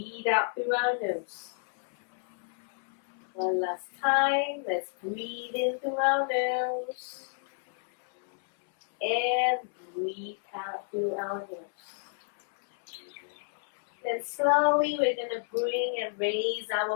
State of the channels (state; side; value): silent; right; 58 dB below the other